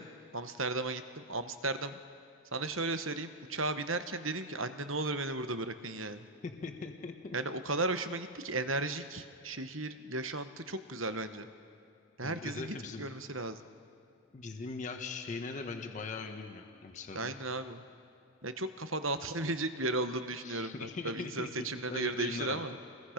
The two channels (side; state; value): both; normal; correlation 0.03